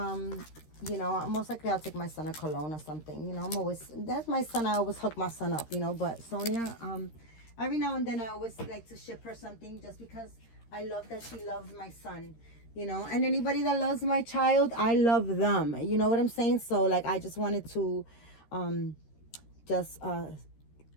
know, most likely I'll take my son a cologne or something. You know, that's my son. I always hook my son up, you know. But Sonia, every now and then I always like to ship her something just because I love that she loves my son. You know, and anybody that loves my child, I love them. You know what I'm saying? So like, I just wanted to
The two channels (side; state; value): right; late; 13 ms